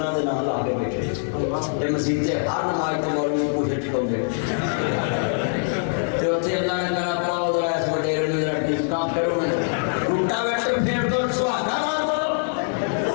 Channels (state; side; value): silent; right; digital silence